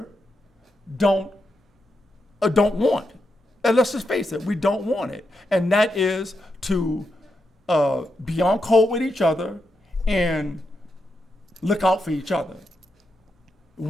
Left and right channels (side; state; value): both; normal; correlation 0.85